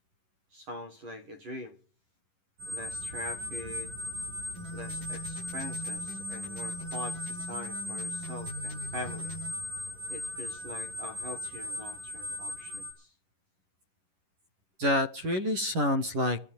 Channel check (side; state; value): left; late; 11 ms